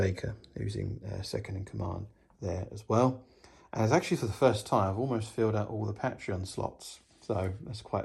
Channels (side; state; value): both; identical; correlation 1.00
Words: who's in second in command there as well. And it's actually for the first time, I've almost filled out all the Patreon slots. So that's